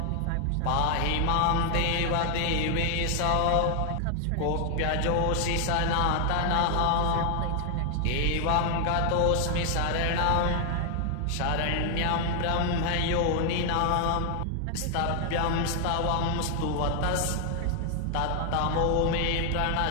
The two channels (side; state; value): both; different; correlation 0.00